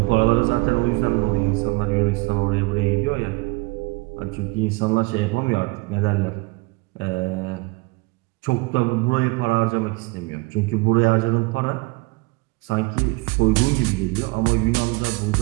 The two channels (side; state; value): left; quieter; 25.1 dB